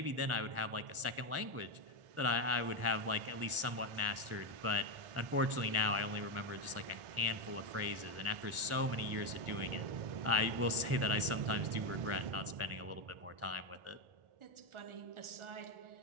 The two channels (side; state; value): left; late; 1.4 ms